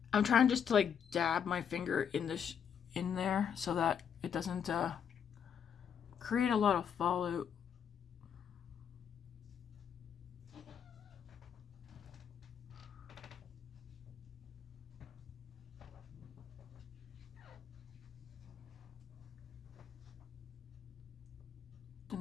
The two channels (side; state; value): right; quieter; 7.9 dB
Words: I'm trying just to like dab my finger in this in there so that it doesn't create a lot of fallout. The